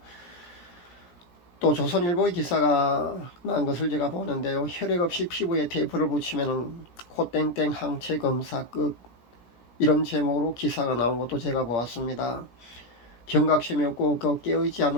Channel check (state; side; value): late; right; 17 ms